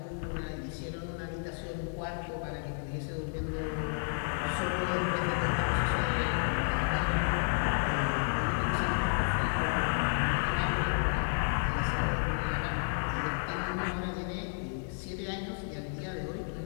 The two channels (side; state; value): right; silent; digital silence